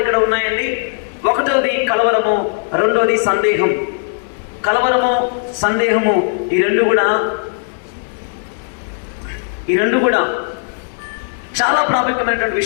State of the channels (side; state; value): right; silent; digital silence